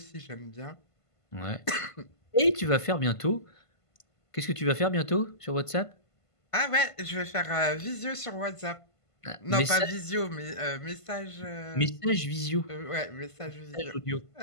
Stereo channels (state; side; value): late; right; 1.5 ms